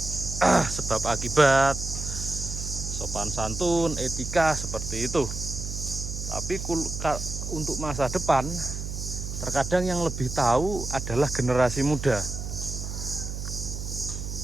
sebab akibat, sopan santun, etika seperti itu. Tapi untuk masa depan, terkadang yang lebih tahu adalah generasi muda.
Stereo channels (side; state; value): right; noise; hum, 6 dB below the sound